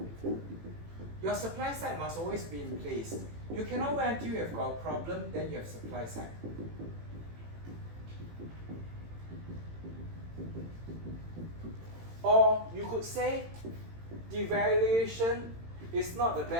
your supply side must always be in place. You cannot wait until you have got a problem, then you have supply side. Or you could say devaluation is not the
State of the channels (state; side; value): late; left; 18 ms